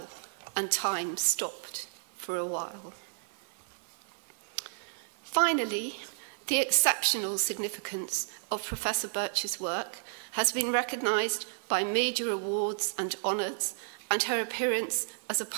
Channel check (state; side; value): silent; left; 56 dB below the other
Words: and time stopped for a while. Finally, the exceptional significance of Professor Birch's work has been recognised by major awards and honours, and her appearance as a